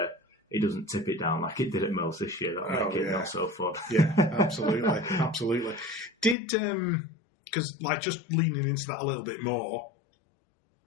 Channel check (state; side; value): drops out; right; at 6.4 s